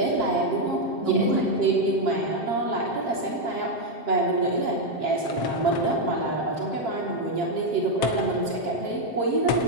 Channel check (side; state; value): right; late; 7.6 ms